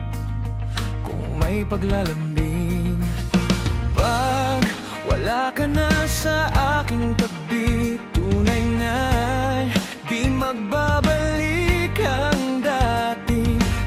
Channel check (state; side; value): identical; both; correlation 1.00